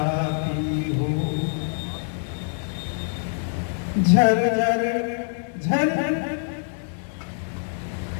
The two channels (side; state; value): right; silent; digital silence